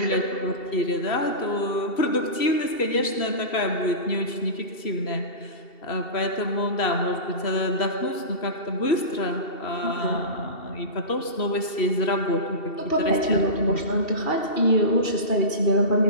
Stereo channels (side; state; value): right; late; 2.7 ms